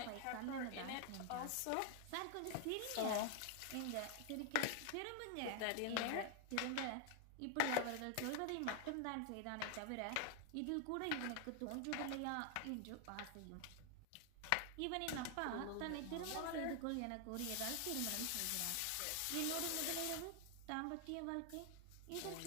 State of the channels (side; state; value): both; different; correlation 0.00